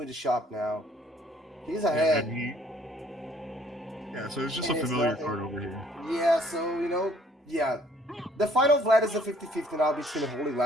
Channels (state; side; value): normal; both; correlation 0.60